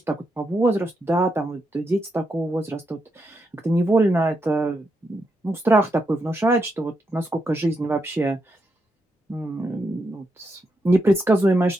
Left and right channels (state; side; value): normal; both; correlation 0.82